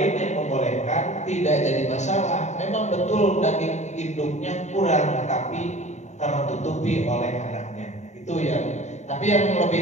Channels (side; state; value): right; late; 0.34 ms